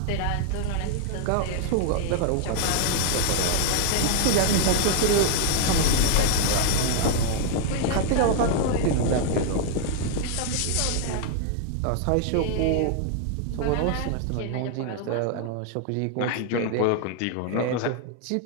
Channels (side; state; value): both; different; correlation 0.00